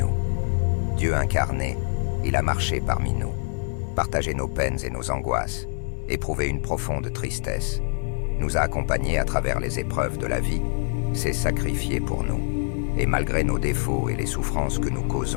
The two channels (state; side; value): silent; right; digital silence